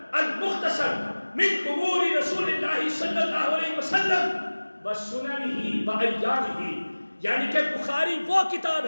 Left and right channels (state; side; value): inverted; both; correlation -1.00